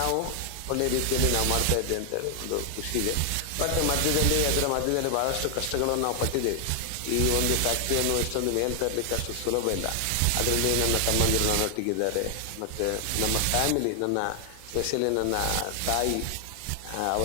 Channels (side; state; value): both; different; correlation 0.00